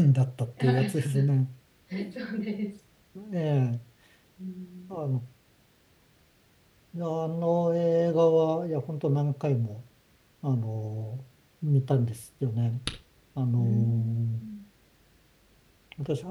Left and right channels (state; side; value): identical; both; correlation 1.00